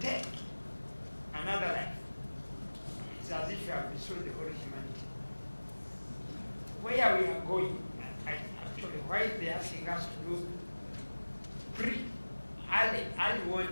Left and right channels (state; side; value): inverted; both; correlation -1.00